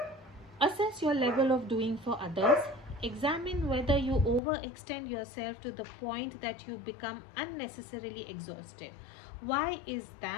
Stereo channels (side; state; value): right; drops out; at 4.4 s